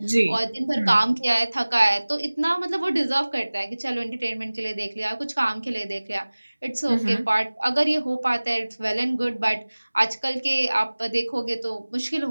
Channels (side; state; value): both; inverted; correlation -1.00